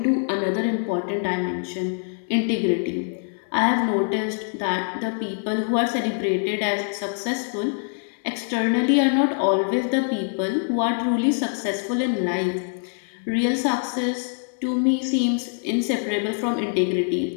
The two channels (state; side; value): silent; right; 62 dB below the other